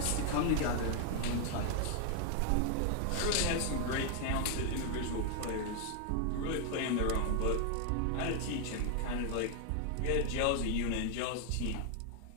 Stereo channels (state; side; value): different; both; correlation 0.00